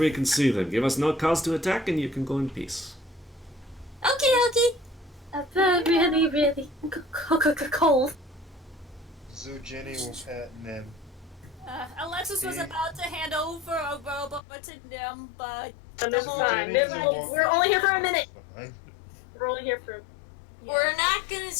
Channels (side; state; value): right; drops out; at 14.4 s